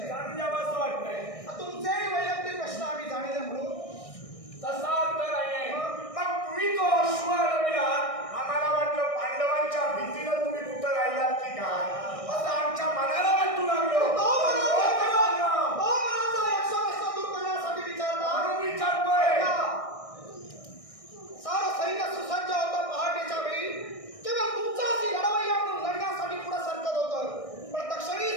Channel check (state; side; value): late; right; 1.6 ms